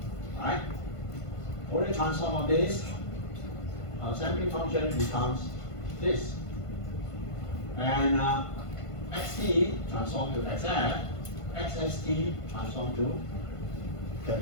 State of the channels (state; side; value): late; right; 1.5 ms